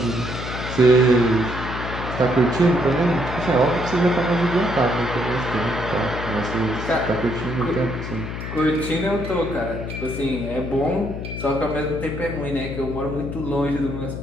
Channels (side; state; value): left; noise; hum, 7 dB below the sound